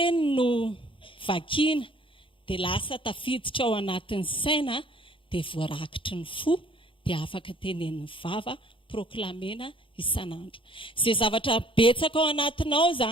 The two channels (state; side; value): late; right; 0.25 ms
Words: no vakiana dia lasa tafiditra ao anatin'ny saina dia voarakitry ny fo dia afaka tenen'ny vava proklamena isan'andro. Izay zavatra betsaka ao anatinao